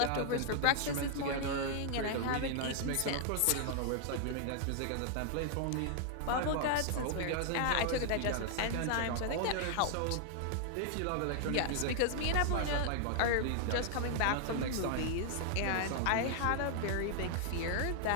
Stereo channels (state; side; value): different; both; correlation 0.00